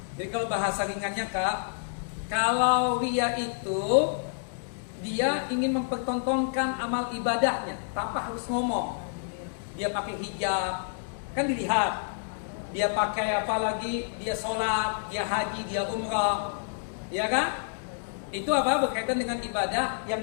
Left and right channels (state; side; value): silent; right; digital silence